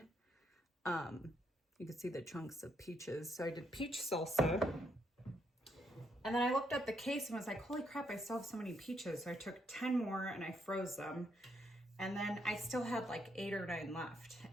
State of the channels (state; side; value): normal; both; correlation 0.76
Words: You can see the chunks of peaches. So I did peach salsa. And then I looked at the case and was like, holy crap, I still have so many peaches. So I took 10 more and I froze them. And then I still had like 8 or 9 left.